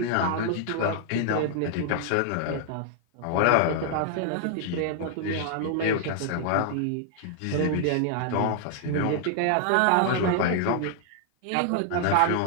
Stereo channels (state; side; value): different; both; correlation 0.00